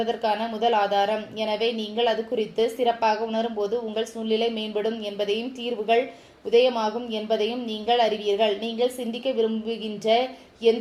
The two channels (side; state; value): both; identical; correlation 1.00